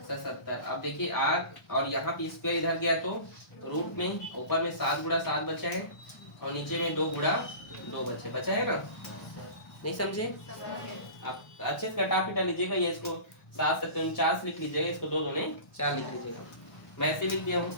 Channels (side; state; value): right; late; 1.0 ms